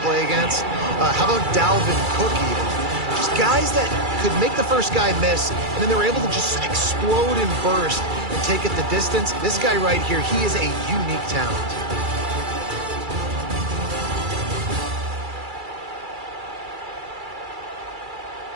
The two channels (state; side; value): late; left; 2.3 ms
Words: play against. How about Dalvin Cook even? Just guys that could make the first guy miss, and then they were able to just explode and burst and take it the distance. This guy right here, he is a unique talent.